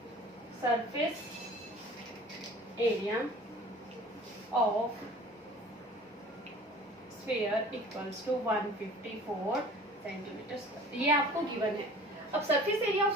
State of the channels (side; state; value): both; normal; correlation 0.46